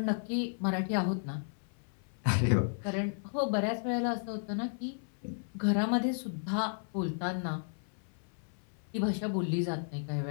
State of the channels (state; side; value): silent; right; 55 dB below the other